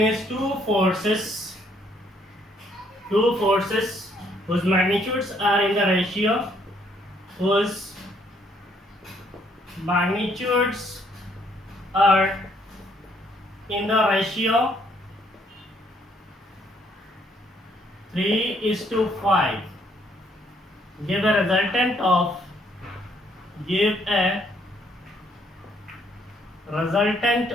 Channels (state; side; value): normal; both; correlation 0.68